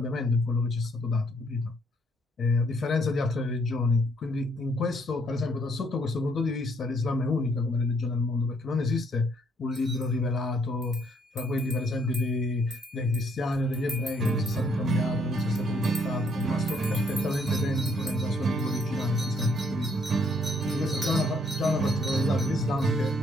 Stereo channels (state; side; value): normal; both; correlation 0.68